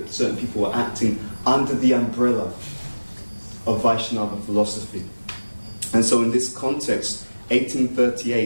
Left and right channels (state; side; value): inverted; both; correlation -1.00